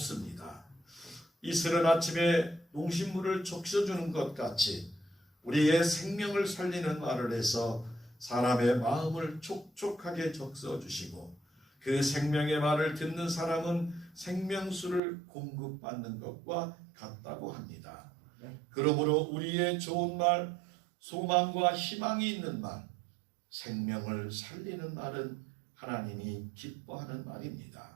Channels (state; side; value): drops out; left; at 15.0 s